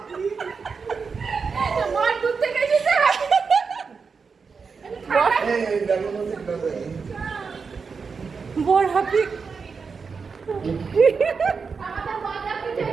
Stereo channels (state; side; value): quieter; left; 5.3 dB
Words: বর দূর থেকে এসেছে। বর হাপি